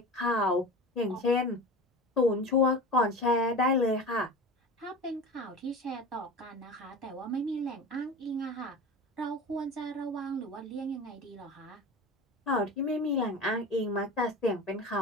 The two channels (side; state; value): both; normal; correlation 0.33